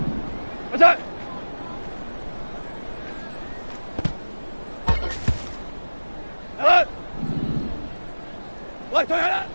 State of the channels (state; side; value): inverted; both; correlation -1.00